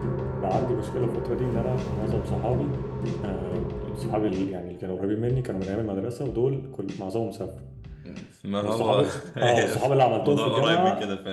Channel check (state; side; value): identical; both; correlation 1.00